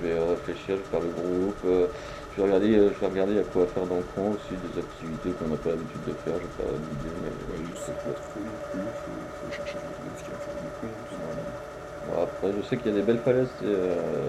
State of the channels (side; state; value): both; identical; correlation 1.00